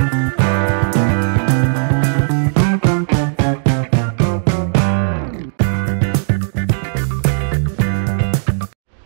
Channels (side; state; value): left; silent; digital silence